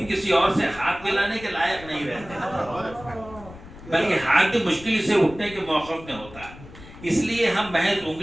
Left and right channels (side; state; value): left; noise; rumble, 17 dB below the sound